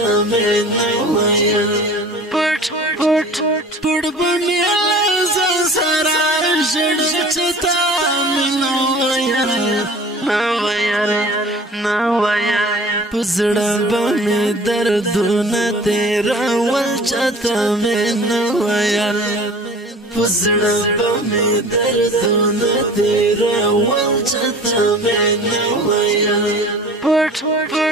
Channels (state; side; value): normal; both; correlation 0.44